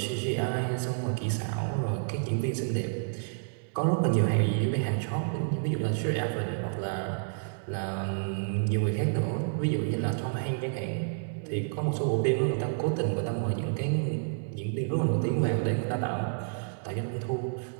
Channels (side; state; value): left; silent; 58 dB below the other